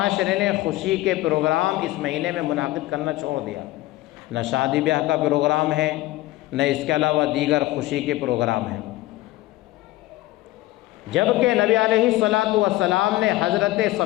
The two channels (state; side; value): quieter; right; 17.5 dB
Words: نے خوشی کے پروگرام اس مہینے میں منعقد کرنا چھوڑ دیا۔ نہ شادی بیاہ کا پروگرام ہے، نہ اس کے علاوہ دیگر خوشی کے پروگرام ہیں، جبکہ نبی علیہ الصلاۃ والسلام نے حضرت